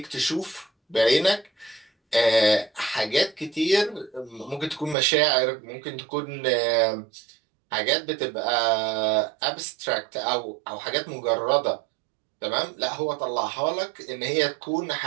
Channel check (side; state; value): left; drops out; at 5.0 s